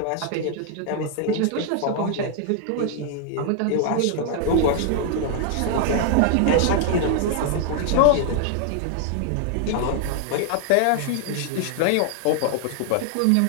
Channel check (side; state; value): both; different; correlation 0.00